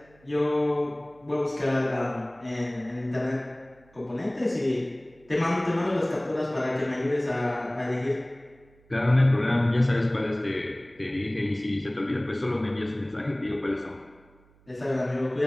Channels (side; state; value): right; noise; hum, 30 dB below the sound